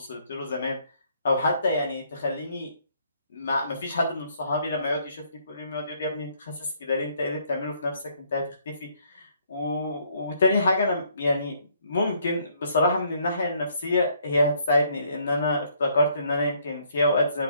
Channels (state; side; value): inverted; both; correlation -0.67